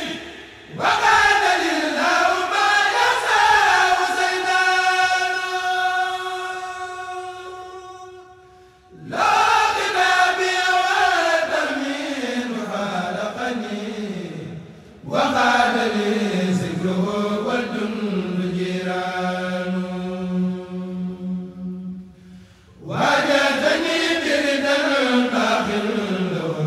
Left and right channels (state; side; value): identical; both; correlation 1.00